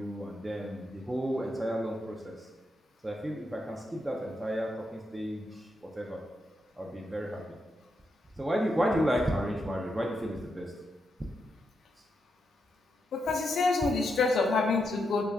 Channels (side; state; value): both; normal; correlation 0.83